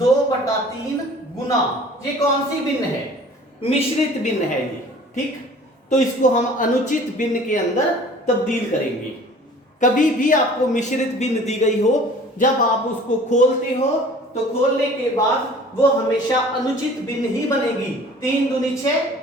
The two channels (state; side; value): normal; both; correlation 0.48